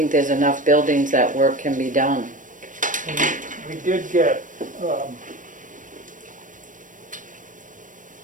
there's enough buildings that work can be done. And we did get,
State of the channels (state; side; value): late; left; 0.38 ms